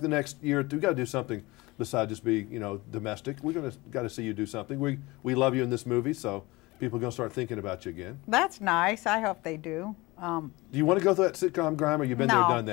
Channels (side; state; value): right; quieter; 22.2 dB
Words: the next year or two? We've got to do something besides just be, you know, domestic. We're got to see you do something. We love you in this movie, so people are going to start thinking about you again. That's nice. I hope they do. Do you want to go through that sitcom grind, or you've been there, done